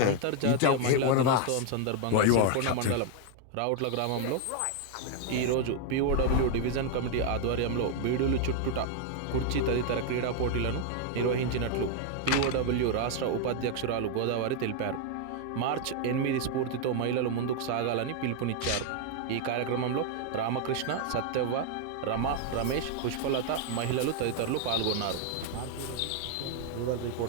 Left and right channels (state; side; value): different; both; correlation 0.00